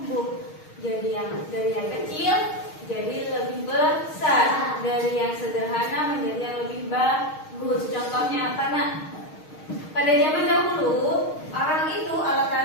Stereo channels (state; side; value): late; right; 6.4 ms